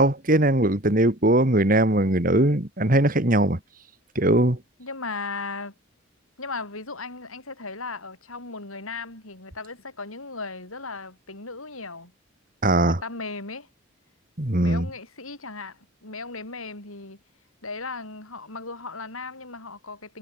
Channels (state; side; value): normal; both; correlation 0.41